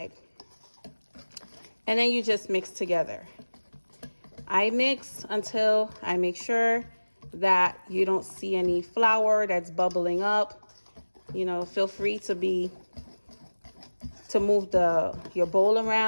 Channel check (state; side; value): inverted; both; correlation -1.00